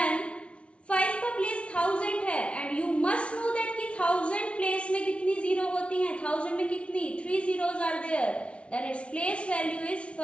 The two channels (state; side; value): late; right; 0.060 ms